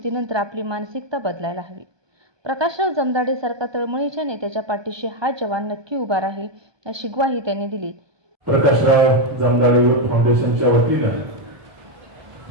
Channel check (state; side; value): late; left; 1.2 ms